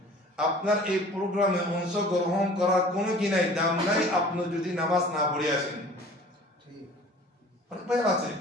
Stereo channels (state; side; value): normal; both; correlation 0.46